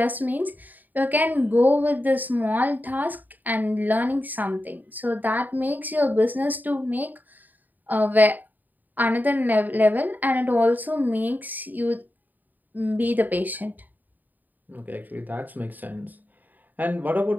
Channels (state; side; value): late; left; 0.085 ms